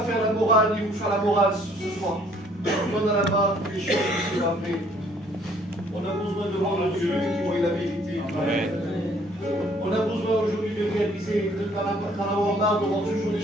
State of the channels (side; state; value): both; normal; correlation 0.61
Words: faire la morale, ni vous faire la morale ce soir. On a là-bas des choses qui sont vraies. On a besoin de voir le Dieu qui voit la vérité. On a besoin aujourd'hui de réaliser, d'en avoir marre de voir toujours les